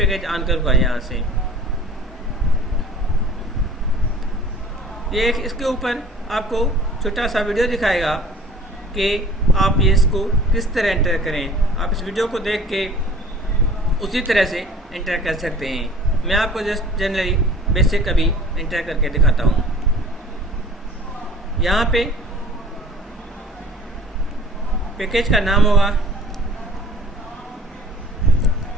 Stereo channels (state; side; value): normal; both; correlation 0.47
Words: ऑन करूँगा यहाँ से। ये इसके ऊपर आपको छोटा सा वीडियो दिखाएगा कि आप ये इसको किस तरह एंटर करें। आप इस वीडियो को देख के उसी तरह से एंटर कर सकते हैं। मैं आपको जस्ट जनरली बेसिक अभी एंटर करके दिखाता हूँ। यहाँ पे पैकेज का नाम होगा